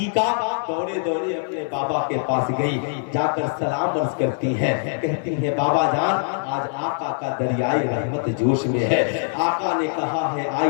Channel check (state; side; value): silent; right; digital silence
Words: دوڑے دوڑے اپنے بابا کے پاس گئی، جا کر سلام عرض کرتی ہیں، کہتی ہیں بابا جان آج آقا کا دریائے رحمت جوش میں ہے۔ آقا نے کہا ہے